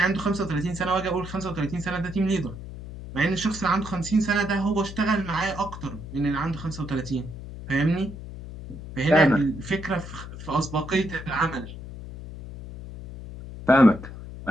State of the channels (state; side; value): noise; left; hum, 11 dB below the sound